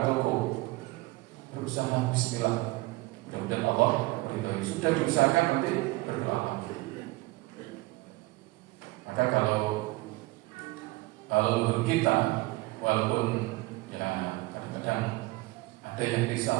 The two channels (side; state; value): left; quieter; 22.1 dB